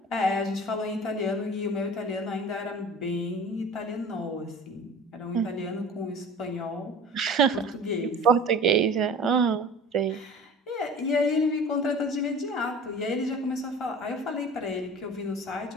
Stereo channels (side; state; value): both; normal; correlation 0.40